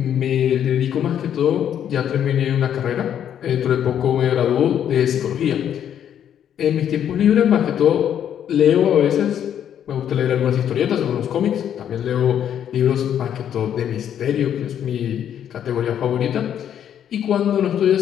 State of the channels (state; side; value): quieter; right; 9.6 dB